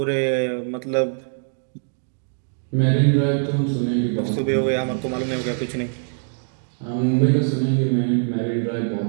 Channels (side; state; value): left; silent; 64 dB below the other